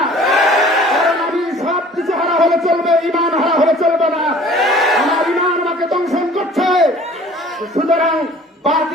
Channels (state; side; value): normal; both; correlation 0.49